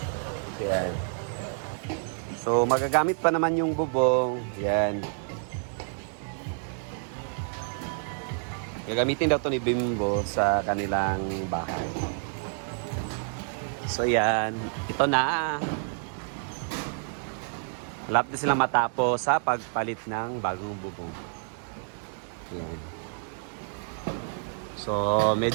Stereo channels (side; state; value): left; silent; 59 dB below the other